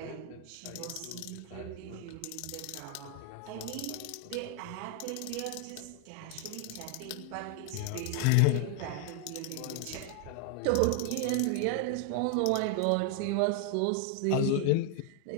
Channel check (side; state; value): both; different; correlation 0.00